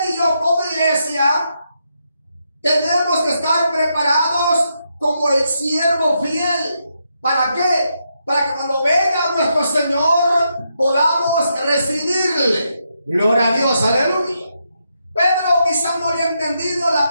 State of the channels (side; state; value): both; inverted; correlation -0.81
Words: y yo como iglesia tenemos que estar preparados como el siervo fiel. ¿Para qué? Para que cuando venga nuestro Señor podamos recibirle. Gloria a Dios, aleluya. Pedro quizá no había entendido la